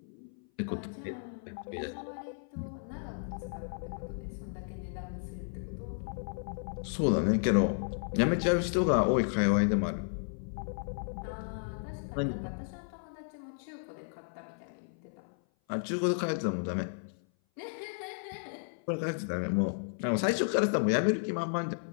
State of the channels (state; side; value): silent; right; 55 dB below the other